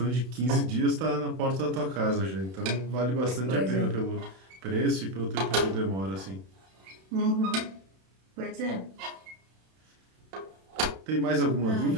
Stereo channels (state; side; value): late; left; 31 ms